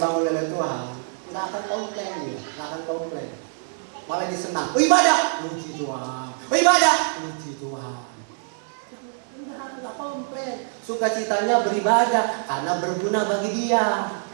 Tuhan nggak akan komplain dia, malah disenang. Ibadah, puji Tuhan. Nggak komplain. Sukacitanya beribadah karena berguna bagi dia.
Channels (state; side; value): silent; left; digital silence